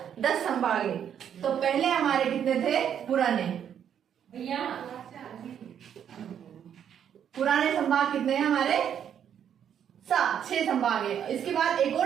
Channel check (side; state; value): left; quieter; 8.9 dB